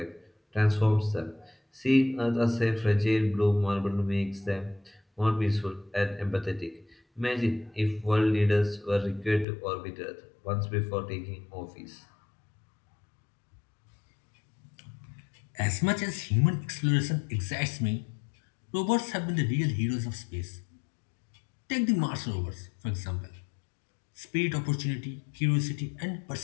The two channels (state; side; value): drops out; right; at 9.5 s